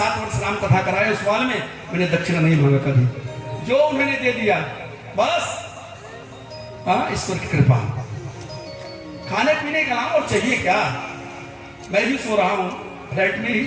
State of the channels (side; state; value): both; identical; correlation 1.00